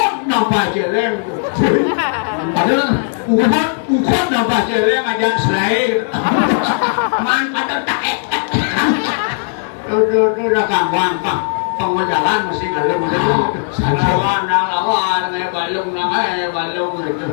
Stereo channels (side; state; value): right; silent; 69 dB below the other